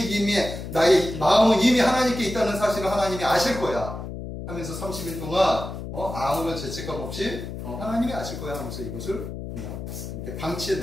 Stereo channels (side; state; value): left; noise; hum, 8 dB below the sound